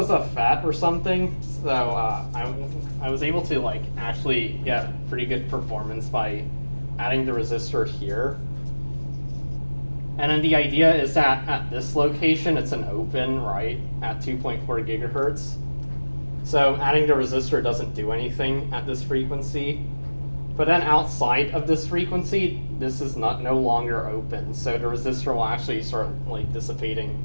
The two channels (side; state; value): both; inverted; correlation -1.00